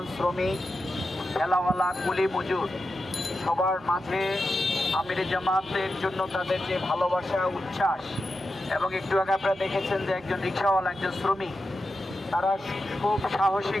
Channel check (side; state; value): both; normal; correlation 0.90